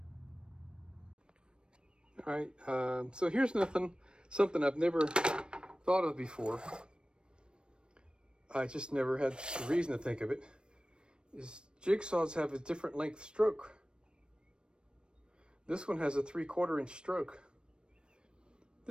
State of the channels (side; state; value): left; late; 0.054 ms